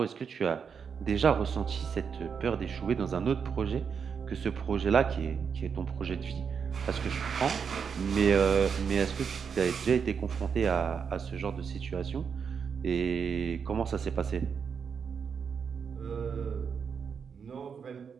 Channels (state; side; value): quieter; left; 6.5 dB